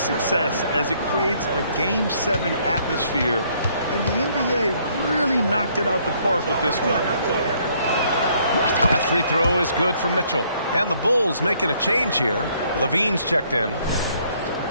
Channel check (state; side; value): inverted; both; correlation -0.66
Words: as it creates a Game 7 atmosphere. And the NBA really knocked it out the park with this one. That free throw is good for Mitchell. And the Bulls making a change here. Levine's checked in.